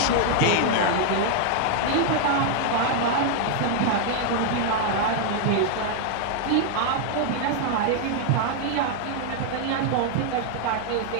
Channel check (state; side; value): different; both; correlation 0.00